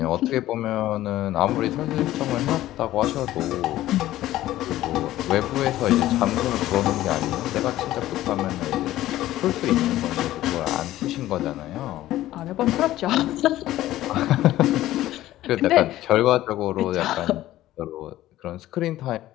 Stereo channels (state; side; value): quieter; right; 14.8 dB